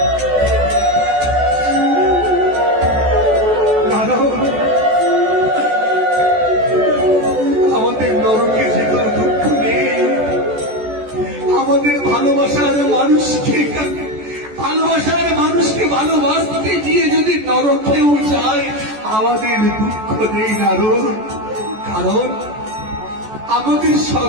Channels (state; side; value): late; left; 14 ms